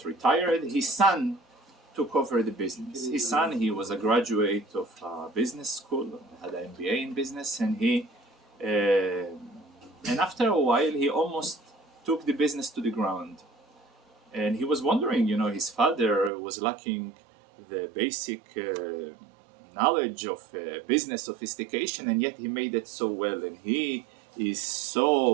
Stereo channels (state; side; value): drops out; left; at 16.3 s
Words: retired. His son took over the business. His son, he was a graduate of business school, had an MBA in business, and and after a while, he almost took the business to the ground. And he was wondering, his father was lacking the basic knowledge of business sophistication, and yet he made it so well, and he is